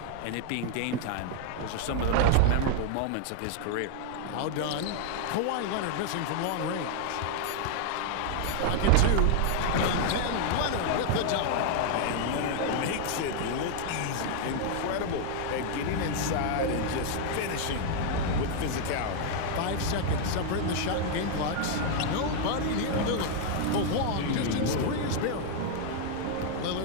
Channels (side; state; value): both; different; correlation 0.00